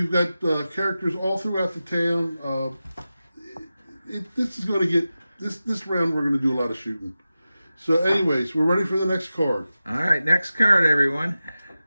got characters all throughout the town. This is going to get this round. We're going to do a lot of shooting. So, anyways, we're ready for the next card. All right, next card, everyone.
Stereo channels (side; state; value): both; inverted; correlation -0.94